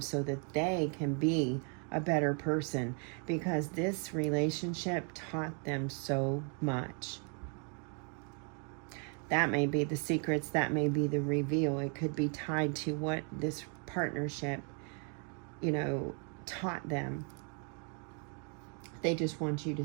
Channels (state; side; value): quieter; left; 39.2 dB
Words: so that they can be a better person, because this relationship taught them so much. That may be the secrets, that may be the reveal. It could be tied to what this partnership, you know, taught them. They just want you to